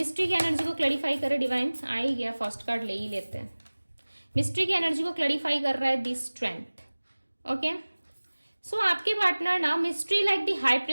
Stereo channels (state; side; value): inverted; both; correlation -1.00